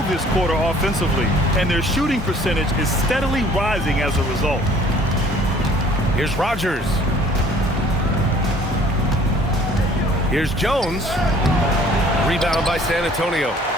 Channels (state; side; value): normal; both; correlation 0.55